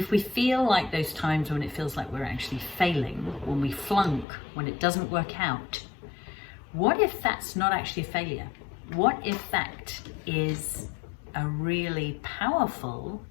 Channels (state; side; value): drops out; right; at 4.2 s